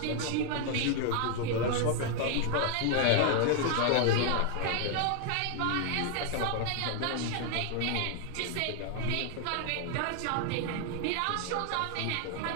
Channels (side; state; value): both; different; correlation 0.00